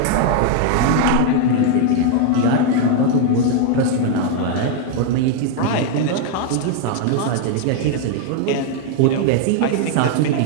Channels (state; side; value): different; both; correlation 0.00